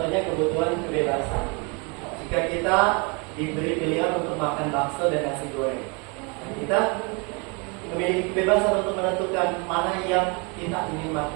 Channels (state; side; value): quieter; left; 31.7 dB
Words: kebutuhan kebebasan. Jika kita diberi pilihan untuk makan bakso dan nasi goreng, kita memiliki kebebasan untuk menentukan mana yang kita ingin